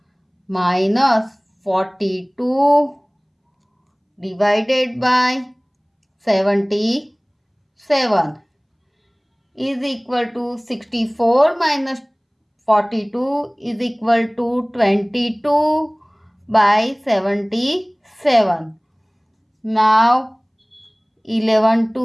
minus 42 divided by 77 is equal to 64 minus 42 is equal to 22 by 77. Now 11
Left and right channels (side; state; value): both; identical; correlation 1.00